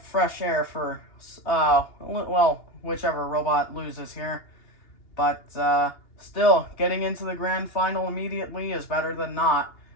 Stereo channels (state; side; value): late; right; 2.8 ms